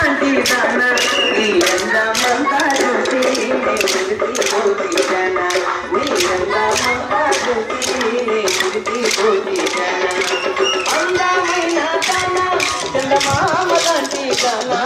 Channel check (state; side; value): identical; both; correlation 1.00